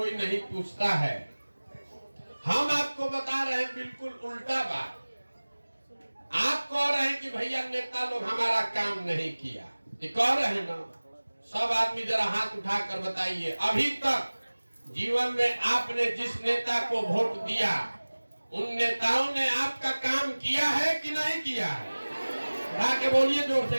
नहीं पूछता है। हम आपको बता रहे हैं बिल्कुल उल्टा बात। आप कह रहे हैं कि भैया नेता लोग हमारा काम नहीं किया, ये कह रहे हैं ना? सब आदमी जरा हाथ उठाकर बताइए, अभी तक जीवन में आपने जिस नेता को वोट दिया, उन नेताओं ने आपका काम किया है कि नहीं किया है? उठा के बोलिए जोर से,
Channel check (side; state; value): both; inverted; correlation -1.00